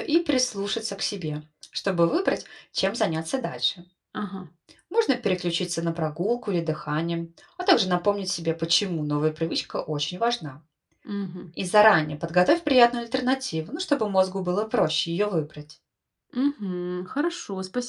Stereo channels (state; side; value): identical; both; correlation 1.00